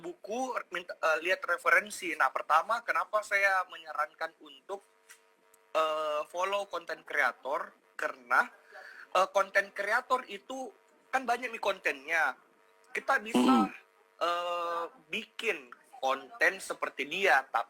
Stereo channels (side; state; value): both; identical; correlation 1.00